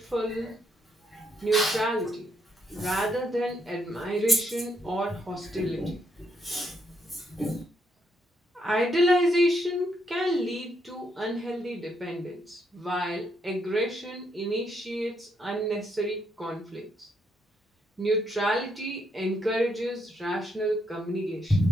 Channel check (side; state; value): both; normal; correlation 0.76